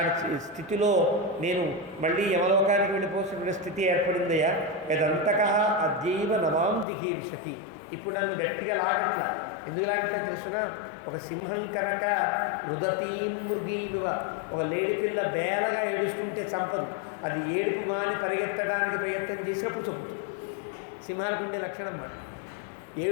స్థితిలో నేను మళ్ళీ యమలోకానికి వెళ్ళిపోతున్న స్థితి ఏర్పడిందయ్యా. యదంతక అద్యైవ నమాం జిహీర్షతి. ఇప్పుడు నన్ను గట్టిగా లాగట్లా. ఎందుకు లాగట్లా తెలుసునా? ఒక సింహం కనుక రుదతీం మృగీమివ, ఒక లేడిపిల్ల బేలగా ఏడుస్తుంటే చంపదు, అది ఏడుపు మాని పరిగెత్తడానికి ప్రయత్నం చేసినప్పుడు చంపుతుంది. సింహానికి ఉండే లక్షణం మాట.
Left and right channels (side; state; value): right; drops out; at 6.9 s